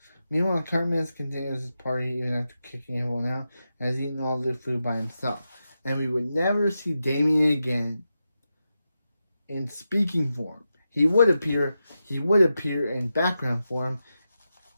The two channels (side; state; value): both; inverted; correlation -0.89